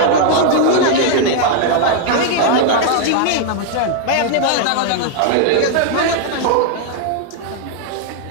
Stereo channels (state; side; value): different; both; correlation 0.00